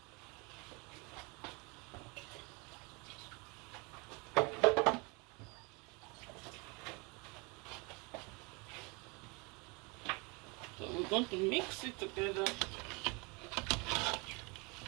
So we're going to mix it together,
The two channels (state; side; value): quieter; left; 29.3 dB